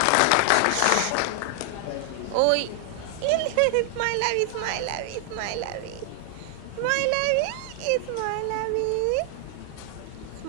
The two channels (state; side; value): different; both; correlation 0.00